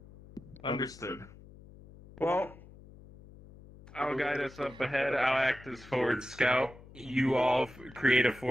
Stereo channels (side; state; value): left; noise; hum, 20 dB below the sound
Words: Understood. Well, I'll guide us up ahead. I'll act as forward scout. You all create a